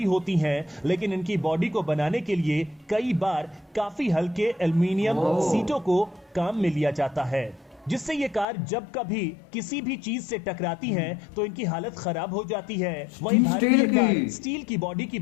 होती हैं, लेकिन इनकी बॉडी को बनाने के लिए कई बार काफी हल्के एल्युमिनियम सीटों को काम में लिया जाता है, जिससे ये कार जब कभी किसी भी चीज से टकराती हैं तो इनकी हालत खराब हो जाती है। वहीं भारतीय कार स्टील की बॉडी की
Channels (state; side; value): drops out; right; at 8.5 s